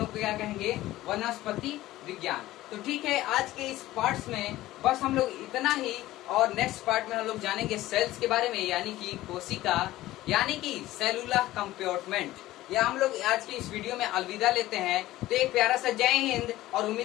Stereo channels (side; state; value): right; quieter; 16.1 dB